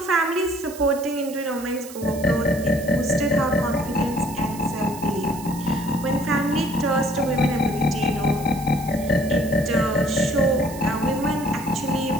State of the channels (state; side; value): noise; right; hiss, 16 dB below the sound